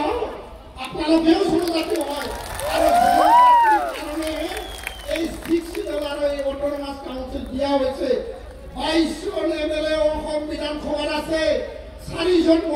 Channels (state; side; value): identical; both; correlation 1.00